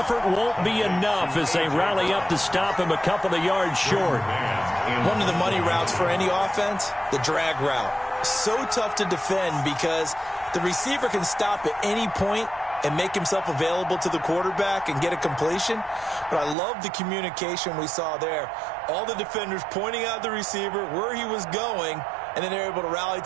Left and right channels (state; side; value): drops out; left; at 16.6 s